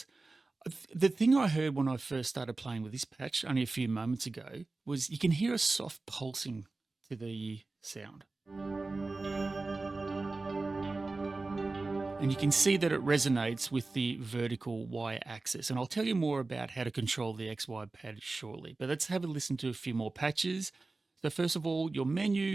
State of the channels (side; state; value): left; quieter; 3.5 dB